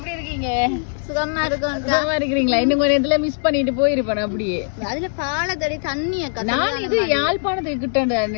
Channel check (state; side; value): silent; right; digital silence